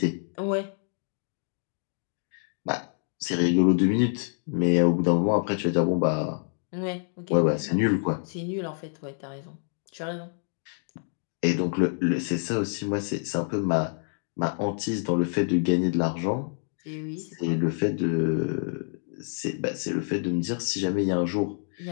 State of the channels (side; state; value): right; silent; digital silence